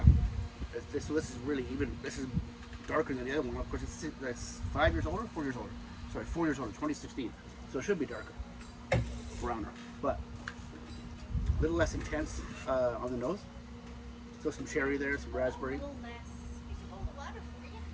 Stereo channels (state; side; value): identical; both; correlation 1.00